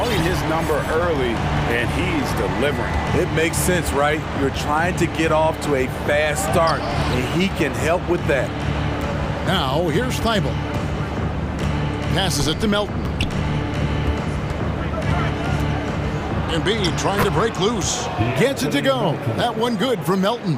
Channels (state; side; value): identical; both; correlation 1.00